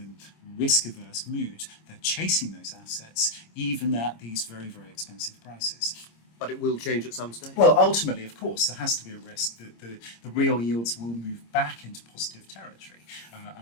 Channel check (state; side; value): late; right; 26 ms